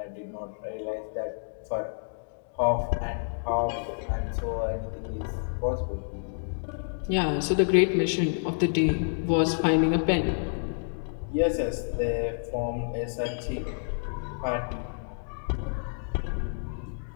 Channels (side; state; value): right; silent; digital silence